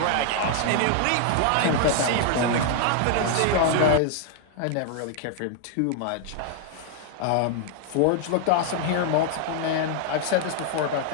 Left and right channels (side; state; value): both; different; correlation 0.00